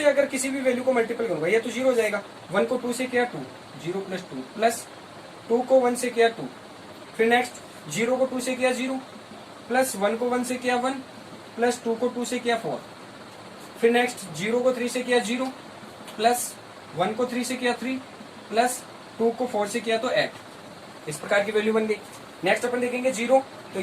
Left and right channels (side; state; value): both; identical; correlation 1.00